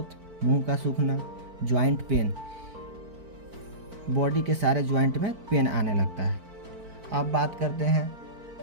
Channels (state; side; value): late; left; 4.5 ms